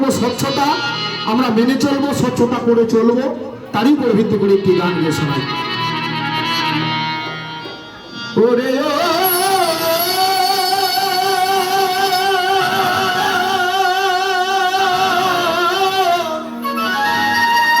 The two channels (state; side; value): identical; both; correlation 1.00